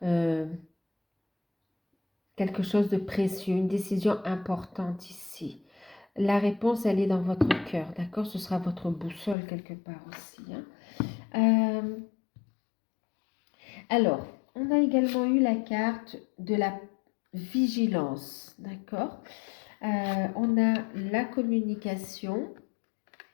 quelque chose de précieux, une décision importante ici. La réponse, elle est dans votre cœur, d'accord? Ce sera votre boussole quelque part aussi, hein. Alors, on a également eu la carte de la vigilance, d'accord? On a la communication,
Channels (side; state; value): right; drops out; at 9.3 s